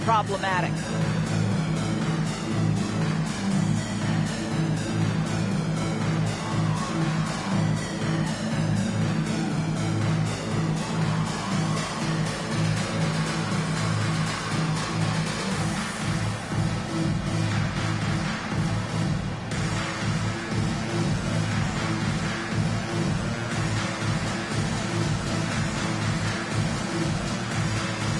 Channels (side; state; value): both; identical; correlation 1.00